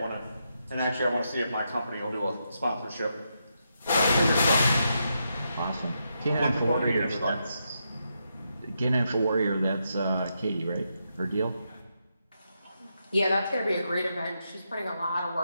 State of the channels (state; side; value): inverted; both; correlation -0.83